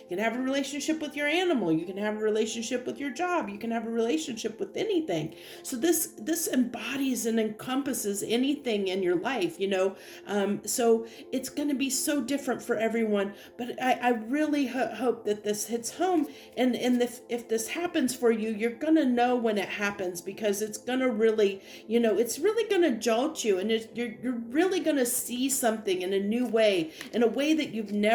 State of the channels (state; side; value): identical; both; correlation 1.00